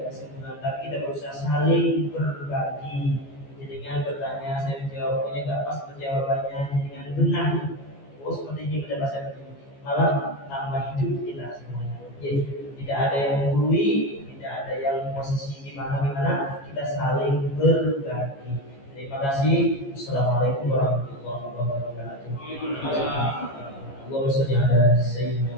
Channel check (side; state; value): right; late; 15 ms